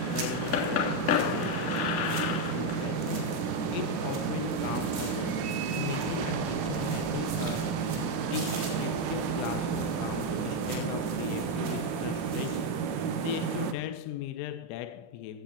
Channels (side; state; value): right; late; 3.1 ms